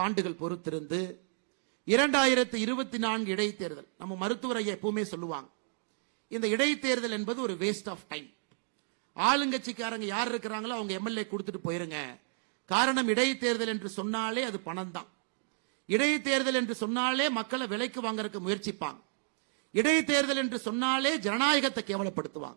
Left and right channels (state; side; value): silent; left; digital silence